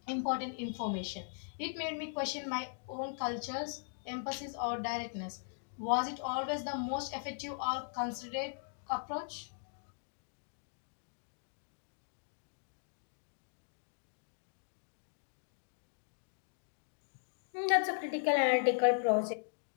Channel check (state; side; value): silent; right; digital silence